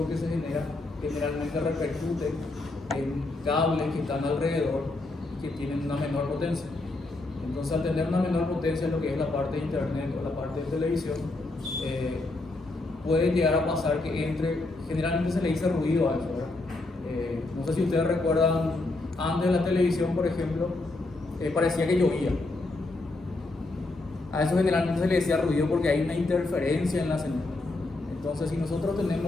que se genera generalmente repercute en cables que están alrededor que tienen una menor potencia. Entonces, al tener una menor potencia en lo que es la parte de internet o la parte de televisión, puede llegar a pasar que entre, generalmente se le dice ruido a eso, ¿verdad? No sé si ustedes recuerdan, antes de la televisión, por ejemplo, parecía que llovía. A eso generalmente se le decía ruido porque hay una interferencia en la señal. Entonces, si nosotros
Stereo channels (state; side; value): quieter; right; 3.0 dB